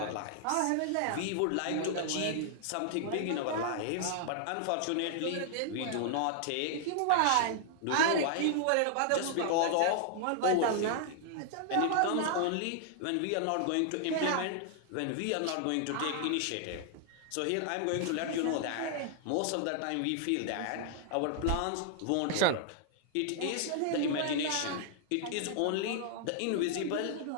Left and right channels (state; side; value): different; both; correlation 0.00